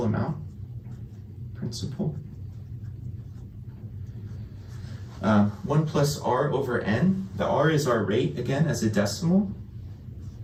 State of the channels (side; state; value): both; identical; correlation 1.00